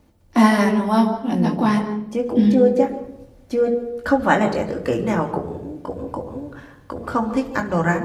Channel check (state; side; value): identical; both; correlation 1.00